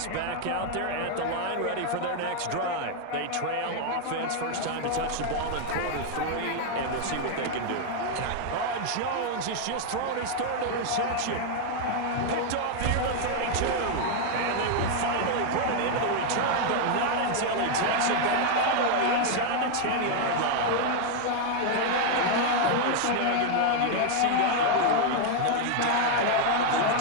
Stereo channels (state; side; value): different; both; correlation 0.00